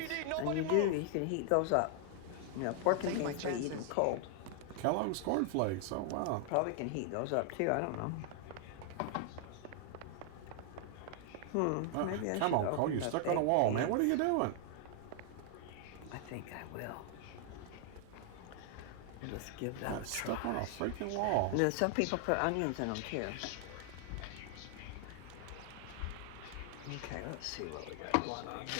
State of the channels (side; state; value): both; different; correlation 0.00